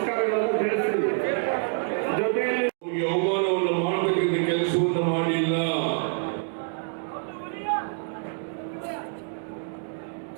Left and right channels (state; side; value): silent; left; 60 dB below the other